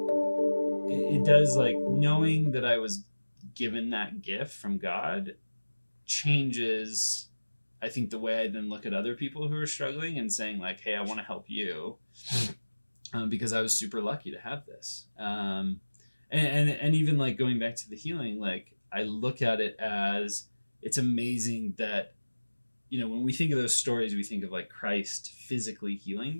It does, like, knowing that I was given that gift from God changes, I think, the way I then look at other people who are struggling and saying like, hey, I want to help you because I was super lucky to have this. And even like going back to the healing, like I look at it as it's amazing that, you know, when we think of those stories, we think of like Christ physically healing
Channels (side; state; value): both; inverted; correlation -1.00